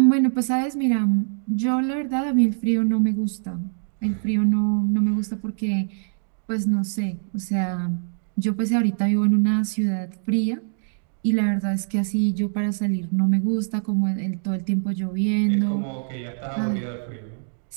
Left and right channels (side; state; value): left; silent; digital silence